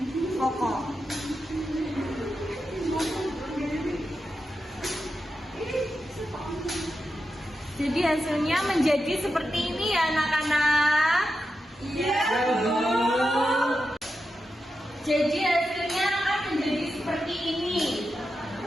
kokoh. Jadi hasilnya menjadi seperti ini ya anak-anak. Iya. Jadi hasilnya akan menjadi seperti ini.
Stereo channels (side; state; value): both; normal; correlation 0.89